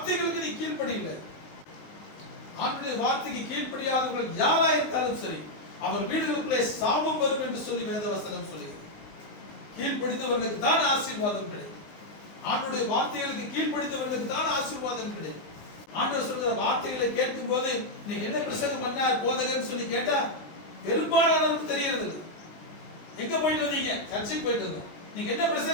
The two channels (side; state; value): right; late; 20 ms